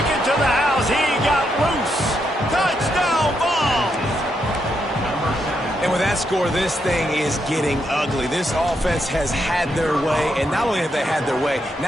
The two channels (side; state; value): both; normal; correlation 0.80